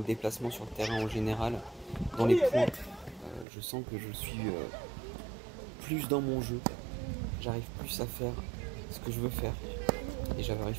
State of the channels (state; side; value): drops out; left; at 3.5 s